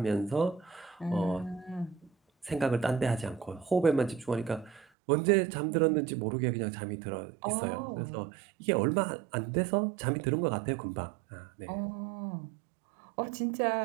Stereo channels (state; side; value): drops out; left; at 4.9 s